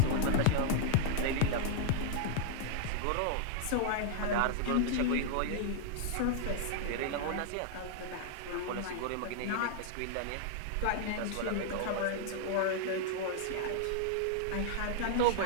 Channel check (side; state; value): both; different; correlation -0.01